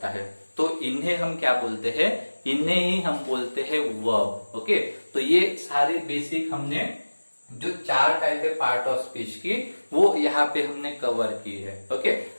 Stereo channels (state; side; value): inverted; both; correlation -1.00